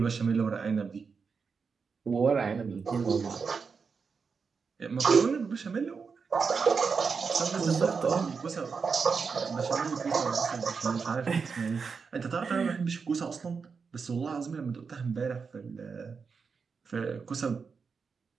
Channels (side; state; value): left; quieter; 5.4 dB